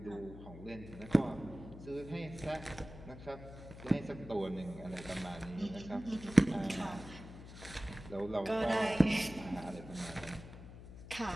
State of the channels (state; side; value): noise; left; hum, 14 dB below the sound